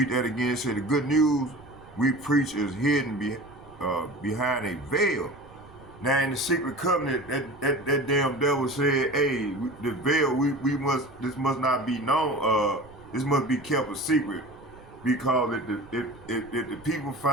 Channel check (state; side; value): noise; right; rumble, 22 dB below the sound